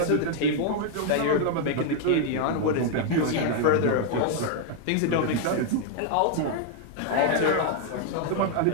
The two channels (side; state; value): both; different; correlation 0.00